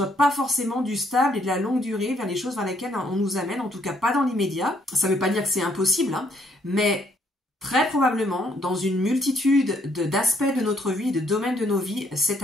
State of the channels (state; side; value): normal; both; correlation 0.68